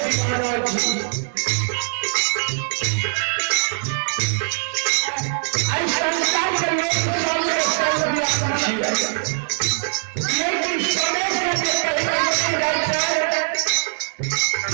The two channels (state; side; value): silent; left; digital silence